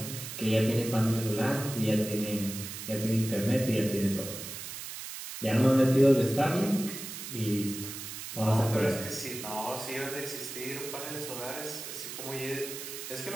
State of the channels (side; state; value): right; noise; hiss, 9 dB below the sound